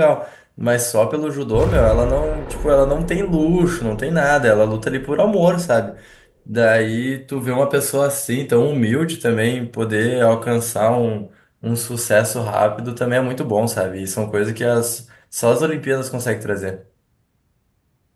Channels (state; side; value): identical; both; correlation 1.00